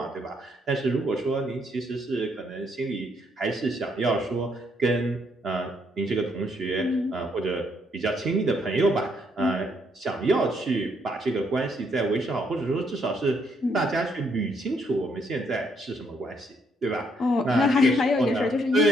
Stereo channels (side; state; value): both; normal; correlation 0.72